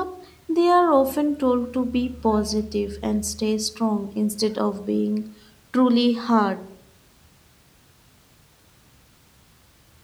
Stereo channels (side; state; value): both; identical; correlation 1.00